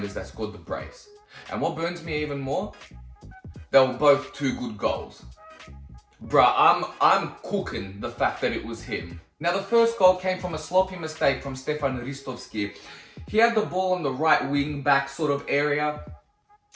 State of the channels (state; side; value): identical; both; correlation 1.00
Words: that scored the brace. And what burns me even more, they were both two good goals. Bruh, I'm cooking the fact that it was him. Now, the first goal came from a sloppy mistake from Stefan Ristovski. He had the ball on the right wing back sort of area,